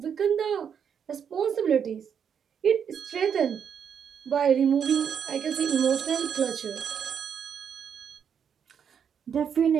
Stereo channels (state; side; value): quieter; left; 7.6 dB